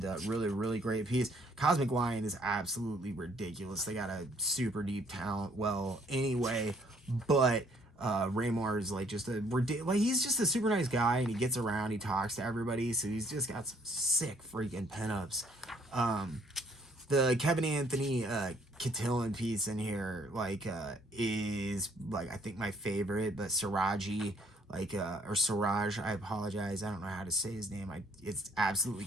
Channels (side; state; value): both; normal; correlation 0.64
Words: really, really great piece. Cosmic Lion is absolutely ridiculous. They got a super deep talent. Well, anyway, but Raymar is like just he's just a super nice guy, and he gets around, he talks to everybody, so he's just got some sick freaking pinups. The Kevin Anthony Cotillion piece in here is like, I think, my favorite, but Siraji, or Siraj, I apologize, I don't know how to say his name. It's absolutely